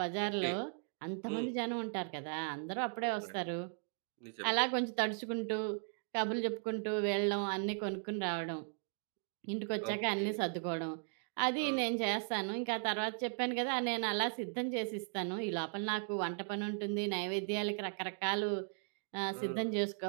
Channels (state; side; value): silent; left; 53 dB below the other